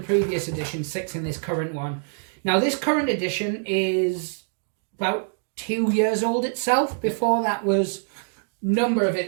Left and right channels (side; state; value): left; silent; digital silence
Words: edition, 6 in this current one. Now, this current edition is about 2 years old itself. Before that was number of